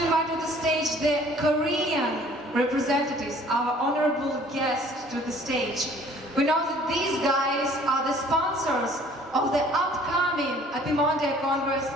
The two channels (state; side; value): normal; both; correlation 0.54